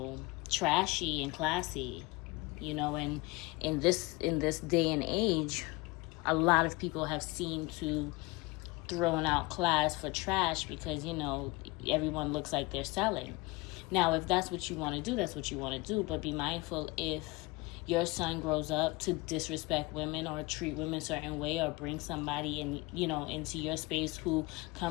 trashy and classy. You know, and in this day and age, a lot of people have seemed to throwing out class for trash because, you know, everyone looks like they're selling. Now, if that's what you want to do, that's what you want to do. But be mindful, if your son grows up to disrespect women or treat women a certain way, or bring somebody in, you know, into your space who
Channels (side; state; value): right; quieter; 23.8 dB